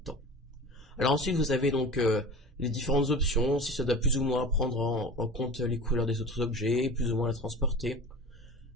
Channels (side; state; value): both; normal; correlation 0.35